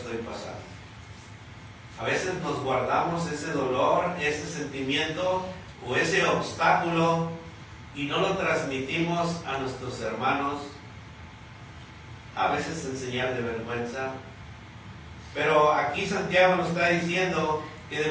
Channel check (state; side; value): identical; both; correlation 1.00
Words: pasando. A veces nos guardamos ese dolor, ese sentimiento o ese obstáculo y no lo transmitimos a nuestros hermanos. A veces en señal de vergüenza. Pero aquí Santiago nos está diciendo que